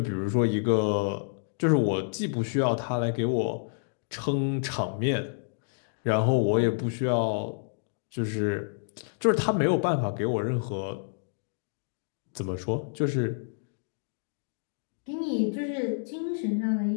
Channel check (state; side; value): silent; right; digital silence